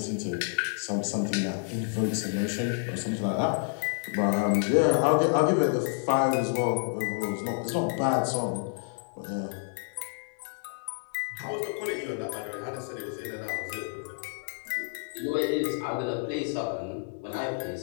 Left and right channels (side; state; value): right; silent; digital silence